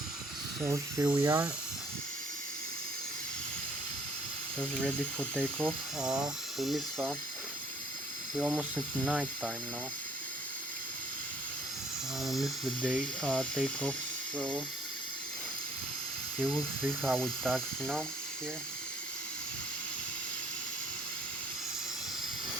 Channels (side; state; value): both; normal; correlation 0.60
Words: So here we are, just ready for takeoff. We're almost at night time now. Missed the day takeoff, so you will see how we taxi now here.